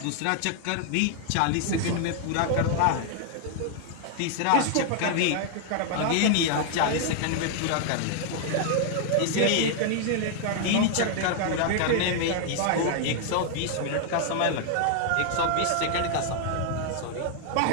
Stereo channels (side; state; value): both; different; correlation 0.00